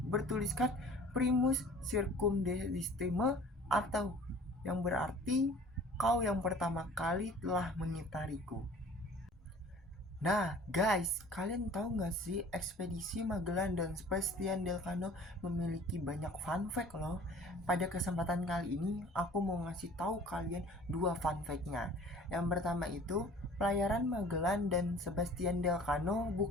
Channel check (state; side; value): normal; both; correlation 0.48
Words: bertuliskan Primus Circumdestime, atau yang berarti kau yang pertama kali telah mengitariku. Nah guys, kalian tahu nggak sih ekspedisi Magellan dan Sebastian del Cano memiliki banyak fun fact loh. Pada kesempatan kali ini aku mau ngasih tahu kalian 2 fun fact-nya. Yang pertama itu, pelayaran Magellan dan Sebastian del Cano